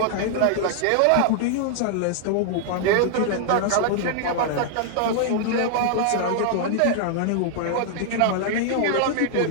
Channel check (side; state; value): both; different; correlation 0.00